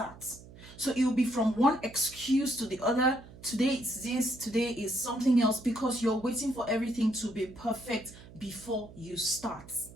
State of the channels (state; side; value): noise; right; hum, 19 dB below the sound